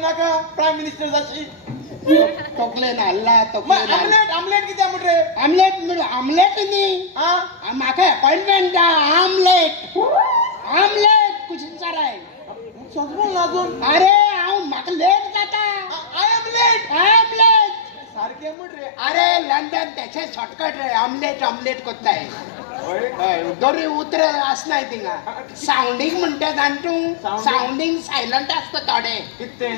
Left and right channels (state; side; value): drops out; right; at 18.6 s